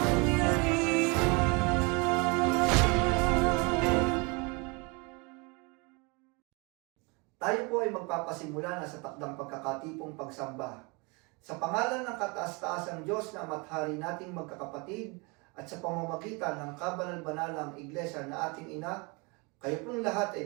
Tayo po ay magpapasimula na sa takdang pagkakatipong pagsamba. Sa pangalan ng kataas-taasang Diyos na ama't-hari nating magkakapatid at sa pamamagitan ng kabanal-banalang iglesia na ating ina, kayo pong lahat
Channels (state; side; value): quieter; left; 29.5 dB